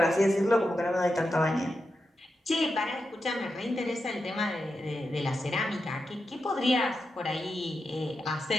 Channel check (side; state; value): both; normal; correlation 0.88